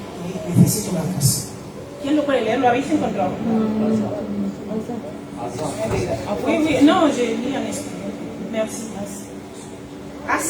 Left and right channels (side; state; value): both; identical; correlation 1.00